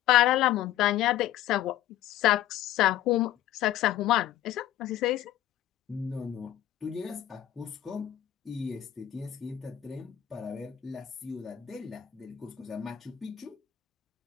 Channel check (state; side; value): quieter; right; 12.7 dB